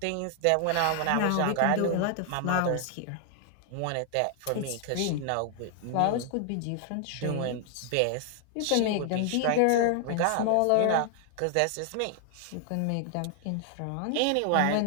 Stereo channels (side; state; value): both; different; correlation 0.00